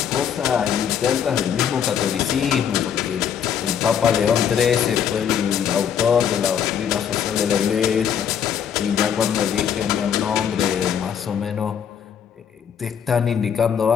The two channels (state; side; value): quieter; right; 8.3 dB